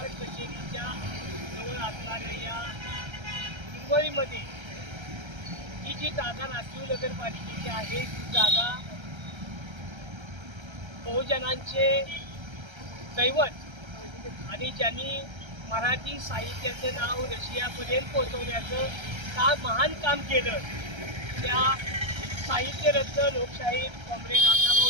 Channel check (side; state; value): left; late; 1.3 ms